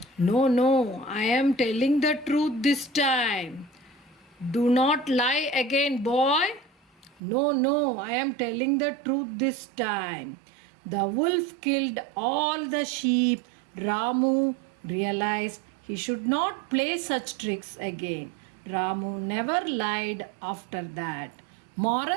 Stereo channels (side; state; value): left; drops out; at 7.2 s